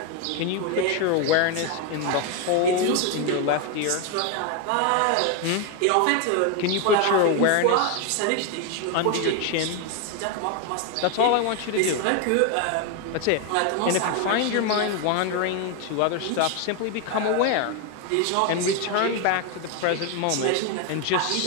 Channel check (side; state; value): both; different; correlation 0.01